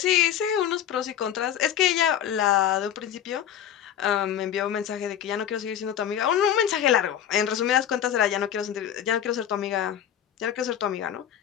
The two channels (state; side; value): quieter; right; 10.0 dB